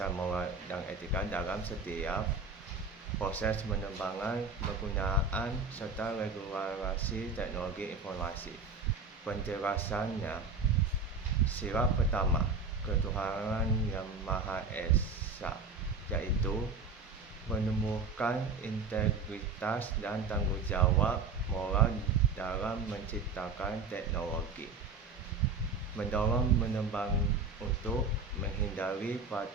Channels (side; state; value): left; quieter; 4.3 dB